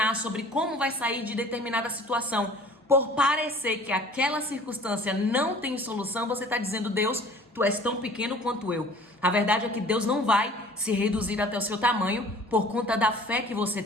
sobre como vai sair de determinada situação, por parecer que aquela circunstância não tem solução, você está dizendo: Deus, tu és tão pequeno quanto eu. A verdade é que Deus não vai se reduzir até o seu tamanho por conta da fé que você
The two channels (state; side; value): normal; both; correlation 0.48